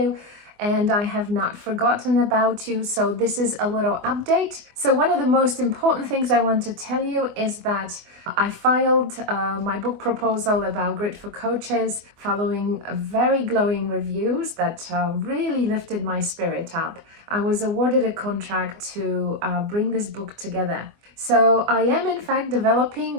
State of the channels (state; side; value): late; left; 24 ms